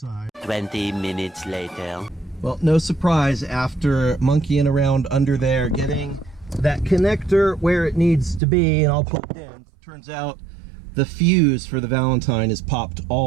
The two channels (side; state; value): left; drops out; at 8.4 s